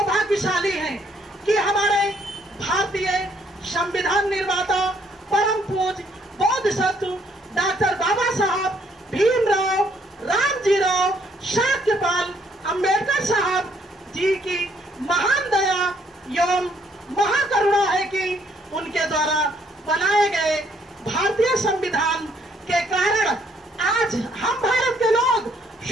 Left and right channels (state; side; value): normal; both; correlation 0.68